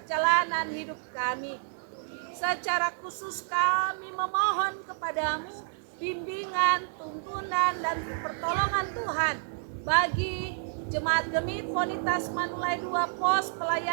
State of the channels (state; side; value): silent; left; digital silence